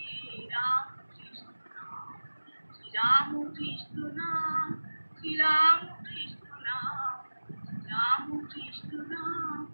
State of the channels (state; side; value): inverted; both; correlation -1.00